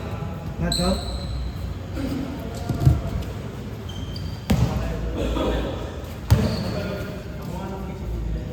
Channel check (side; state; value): both; identical; correlation 1.00